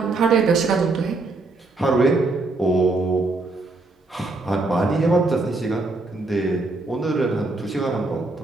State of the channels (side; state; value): left; quieter; 3.3 dB